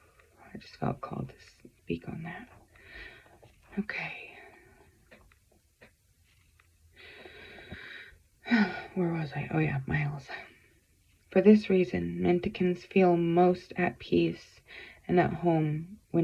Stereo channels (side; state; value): both; identical; correlation 1.00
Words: I just felt called to speak on that. Okay. Where was I? Oh yeah, miles. For this reason, Menticans feel most at peace and at home